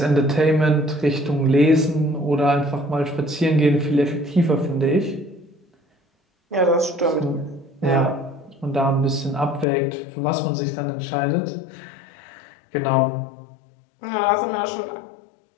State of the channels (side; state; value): right; drops out; at 9.7 s